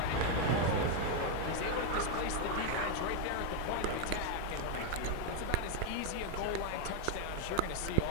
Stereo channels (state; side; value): different; both; correlation 0.01